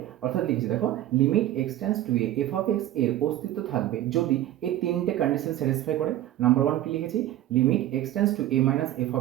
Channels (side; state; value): left; quieter; 13.6 dB